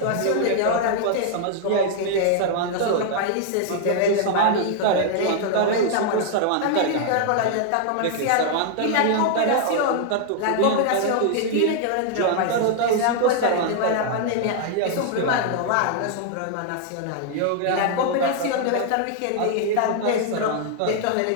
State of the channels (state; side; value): different; both; correlation 0.00